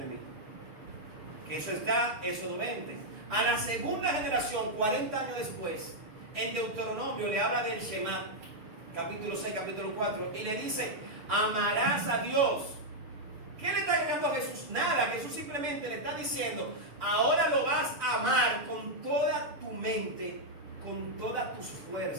mí. Que eso está, Éxodo 20. A la segunda generación, 40 años después, en Deuteronomio le habla del Shema, capítulo 6, capítulo 4, y le dice: amarás a Dios. ¿Qué le está llegando a Jesús? Nada. Jesús simplemente le está diciendo: ahora lo vas a amar con toda tu mente, con todas tus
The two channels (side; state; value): left; late; 6.7 ms